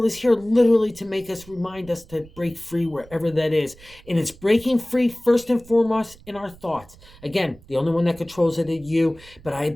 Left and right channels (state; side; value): noise; right; rumble, 23 dB below the sound